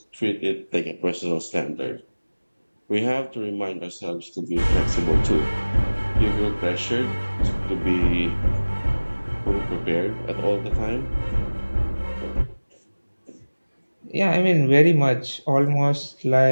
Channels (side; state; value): both; inverted; correlation -1.00